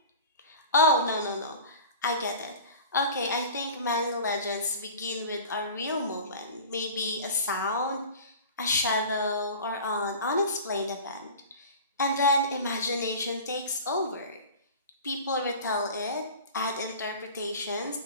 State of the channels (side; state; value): both; inverted; correlation -0.37